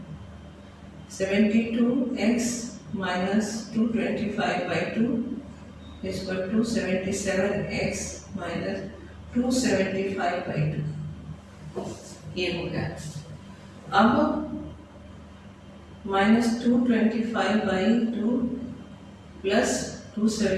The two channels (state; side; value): identical; both; correlation 1.00